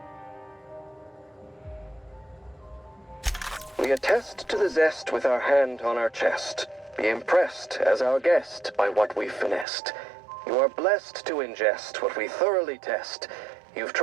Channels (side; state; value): left; drops out; at 9.7 s